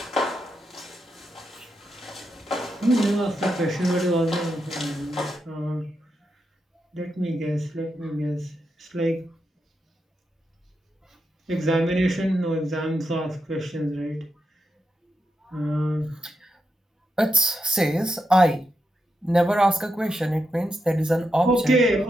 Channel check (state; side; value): normal; both; correlation 0.85